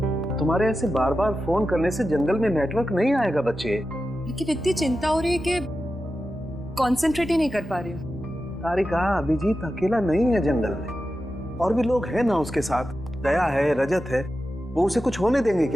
तुम्हारे ऐसे बार बार फोन करने से जंगल में नेटवर्क नहीं आएगा बच्चे। लेकिन इतनी चिंता हो रही है कि कंसंट्रेट ही नहीं कर पा रही हूँ। तारिका, अभिजीत अकेला नहीं है जंगल में, और भी लोग हैं ना उसके साथ। दया है, रजत है, वो उसे कुछ होने देंगे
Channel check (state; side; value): normal; both; correlation 0.91